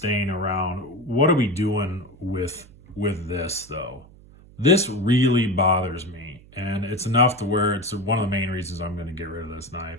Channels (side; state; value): right; noise; hum, 23 dB below the sound